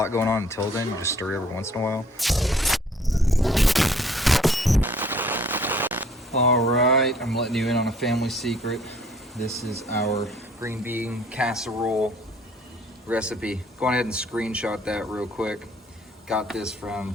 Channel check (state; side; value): normal; both; correlation 0.58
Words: going on until then. You just stir it every once in a while. All right, I'm letting you in on a family secret. This is our green bean casserole recipe. Go ahead and screenshot that real quick. Got this from